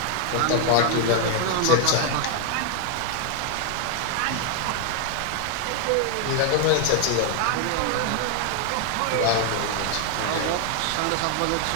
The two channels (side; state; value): both; different; correlation 0.00